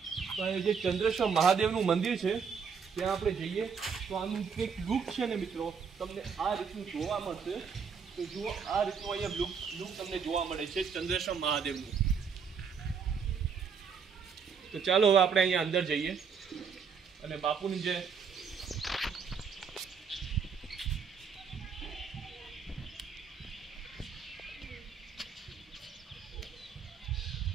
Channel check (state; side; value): quieter; left; 6.2 dB